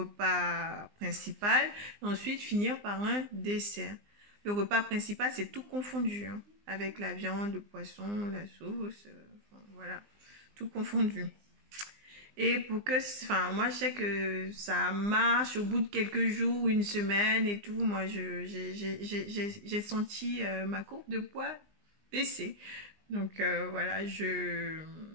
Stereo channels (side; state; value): left; late; 20 ms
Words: principal, et ensuite finir par un dessert. Le repas principal, c'est tout confondu, hein, avec la viande, le poisson, la sauce, voilà, tout confondu. Et pour que, moi je sais que ça marche au bout de quelques jours, une semaine et tout. Moi, j'ai senti ma courbe de poids baisser. Donc voilà, je